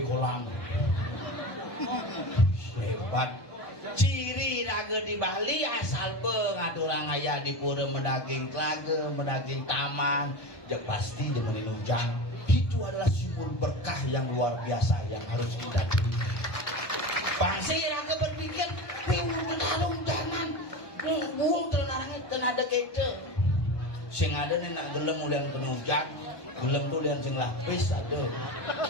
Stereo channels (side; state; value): right; late; 1.2 ms